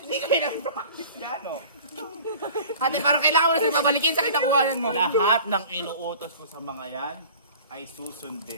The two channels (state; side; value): inverted; both; correlation -0.43